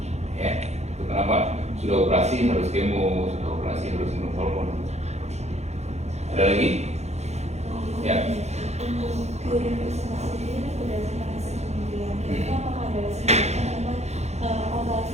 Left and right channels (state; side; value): late; left; 0.32 ms